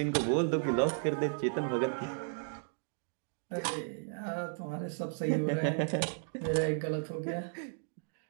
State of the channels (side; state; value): left; silent; digital silence